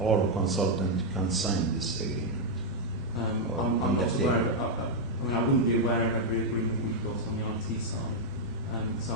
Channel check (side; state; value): both; normal; correlation -0.02